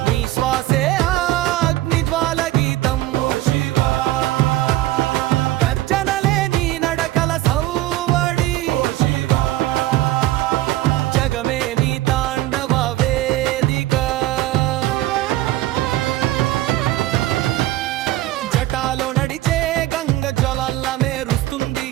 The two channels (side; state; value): left; quieter; 15.9 dB